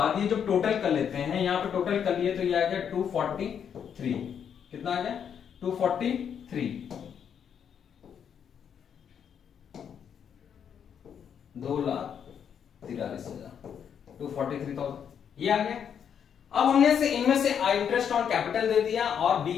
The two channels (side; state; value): right; quieter; 8.0 dB